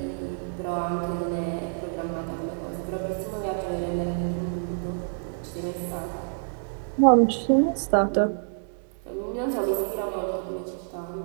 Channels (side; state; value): left; silent; digital silence